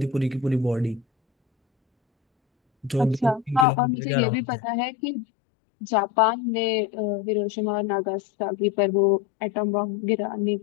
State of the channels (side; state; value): right; drops out; at 3.7 s